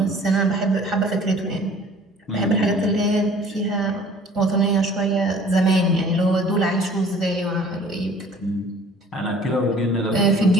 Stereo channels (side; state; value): both; normal; correlation 0.51